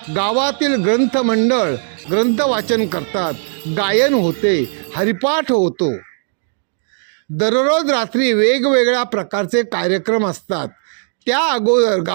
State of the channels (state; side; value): silent; left; digital silence